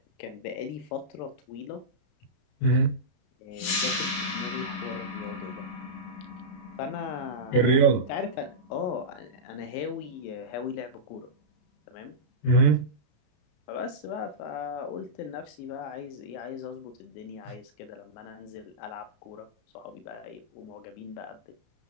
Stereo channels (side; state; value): right; late; 33 ms